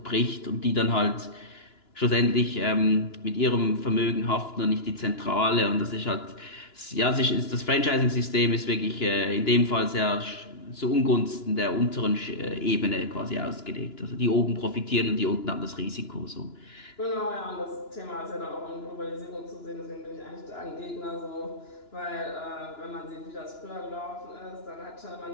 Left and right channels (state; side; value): late; right; 2.9 ms